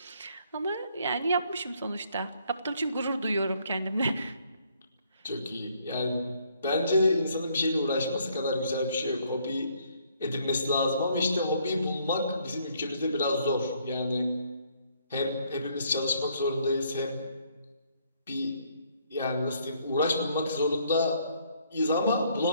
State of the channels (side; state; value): both; inverted; correlation -0.67